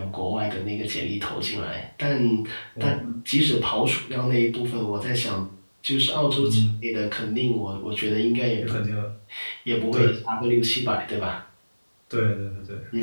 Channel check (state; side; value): inverted; both; correlation -1.00